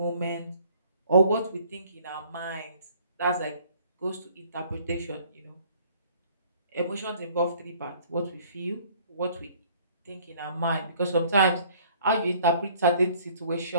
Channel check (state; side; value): inverted; both; correlation -0.56